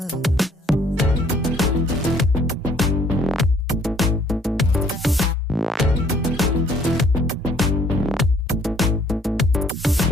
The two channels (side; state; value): both; normal; correlation 0.61